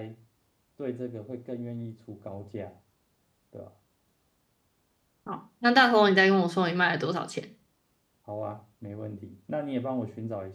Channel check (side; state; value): both; identical; correlation 1.00